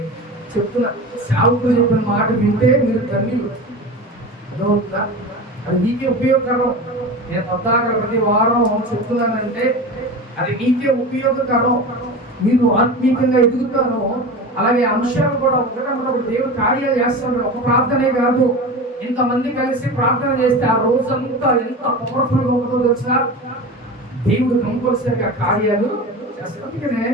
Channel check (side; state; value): both; normal; correlation 0.29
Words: చెప్తున్నా. సేవకులు చెప్పిన మాట వింటే మీరు ధన్యులు. అర్థమవుతుందా? అది మీకే ఉపయోగకరం. నేను కొత్తగా ప్రతి వారం చెప్తున్నానంటే అది మీకే ఉపయోగకరం. మీరు ఆత్మీయంగా ఎదుగుతారు. అలాగే అంశాలు కూడా ఒకటి దేవుడు కార్యాలు చేస్తాడు. ఒక ప్రార్థనే కాదు, ఇంతమంది కలిసి ప్రార్థన చేస్తే ఆ రోజంతా ఎంత పవర్ఫుల్గా ఉంటుందో తెలుసా? దేవుడు కంపల్సరిగా కార్యాలు చేస్తాడు. అందుకనే